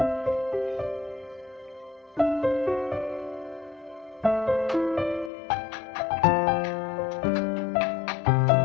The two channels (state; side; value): drops out; right; at 5.3 s